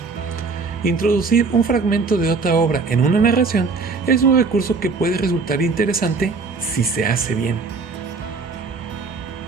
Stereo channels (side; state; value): left; quieter; 4.4 dB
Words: Introducir un fragmento de otra obra en una narración es un recurso que puede resultar interesante si se hace bien.